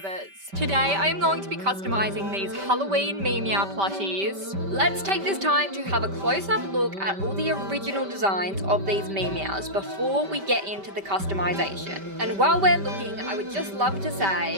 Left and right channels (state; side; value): late; left; 5.1 ms